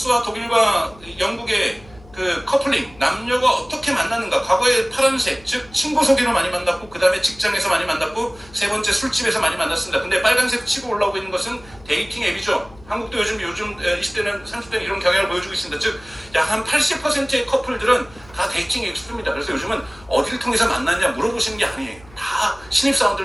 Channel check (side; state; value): left; noise; hum, 23 dB below the sound